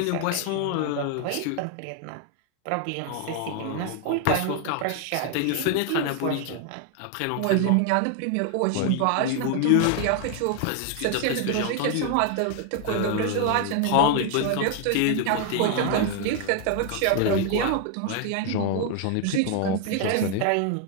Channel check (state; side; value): different; both; correlation 0.00